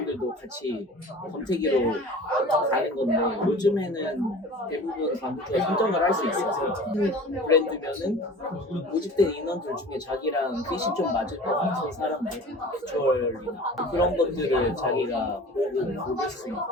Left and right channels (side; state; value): both; normal; correlation 0.41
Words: 같이 검색기로 가는 건데 요즘에는 대부분 광고주가 선정을 할 수 있어서 브랜드면은 모집된 인원들 중에 자기랑 핏이 좀 맞을 것 같은 사람들 비주얼이나 그런 것들을 자기가 보고 고를 수